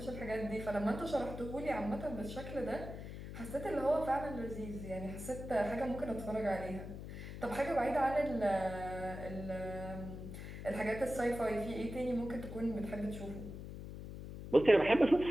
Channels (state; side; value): noise; left; hum, 9 dB below the sound